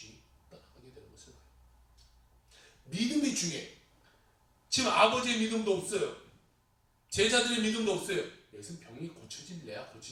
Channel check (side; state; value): both; identical; correlation 1.00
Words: 떠나가게 되는 것을 봐요. 믿음이 중요해. 지금 아버지의 믿음도 없어요. 제자들의 믿음도 없어요. 여기서 병이 고쳐질래야